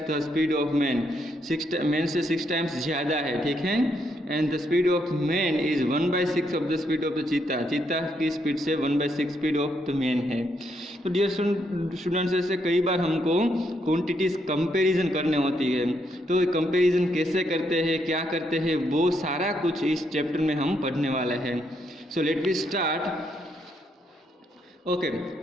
the speed of man, man से 6 टाइम्स ज़्यादा है, ठीक है। And the speed of man is 1/6 of the speed of the चीता, चीता की स्पीड से 1/6 स्पीड ऑफ द मैन है। तो डियर स्टूडेंट्स, ऐसे कई बार हमको क्वांटिटीज़ कंपैरिजन करने होती है। तो कंपैरिजन कैसे करते हैं, क्या करते हैं, वो सारा कुछ इस चैप्टर में हम पढ़ने वाले हैं। So let we start. Okay,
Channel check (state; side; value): normal; both; correlation 0.76